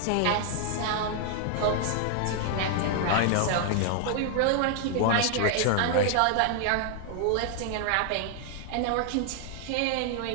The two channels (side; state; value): both; different; correlation 0.00